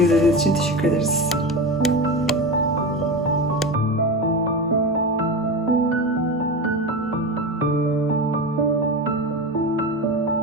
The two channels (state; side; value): normal; both; correlation 0.23